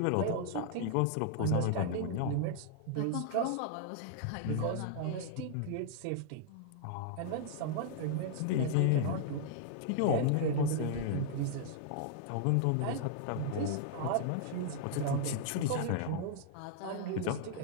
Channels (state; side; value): different; both; correlation -0.01